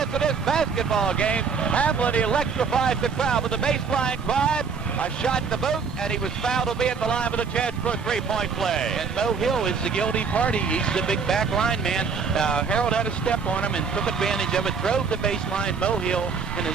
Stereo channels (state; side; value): quieter; left; 5.6 dB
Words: of this basketball game. Hamlin electrifies the crowd with a baseline drive, a shot to boot, and he was fouled to be at the line with a chance for a three-point play. And Mo Hill is the guilty party. He's the big back line man. Harold had a step on him and took advantage of it, drove the baseline. Mo Hill, in an